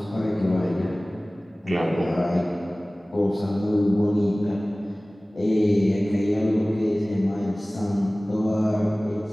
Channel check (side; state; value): both; normal; correlation 0.98